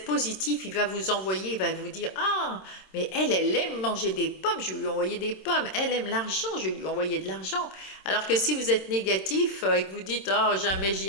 positif, il va vous envoyer, il va vous dire: ah, mais elle aime manger des pommes, je vais lui envoyer des pommes, elle aime l'argent, je vais lui envoyer de l'argent. Alors que si vous êtes négatif et que vous dites: oh, jamais j'y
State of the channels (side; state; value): right; late; 26 ms